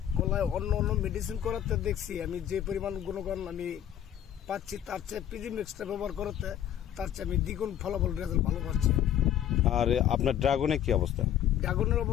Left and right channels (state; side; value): quieter; right; 10.6 dB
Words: কলায় অন্য মেডিসিন করাতে দেখছি আমি যে পরিমাণ গুণগণ আমি পাচ্ছি, তার চেয়ে পিজি ম্যাক্সটা ব্যবহার করতে তার চেয়ে আমি দ্বিগুণ ফলাফল রেজাল্ট ভালো পাচ্ছি। আর আপনার ড্রাগনের কি অবস্থা? ড্রাগনের